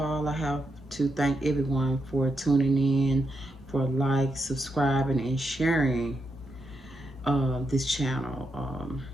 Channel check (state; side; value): normal; both; correlation 0.83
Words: I have to thank everyone for tuning in, for subscribing, and sharing this channel.